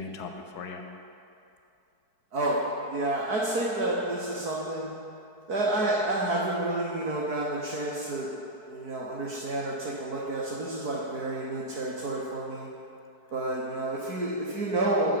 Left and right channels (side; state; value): left; late; 4.6 ms